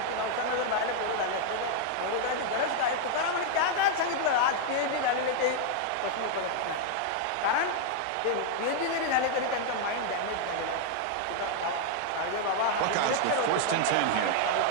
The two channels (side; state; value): both; different; correlation 0.00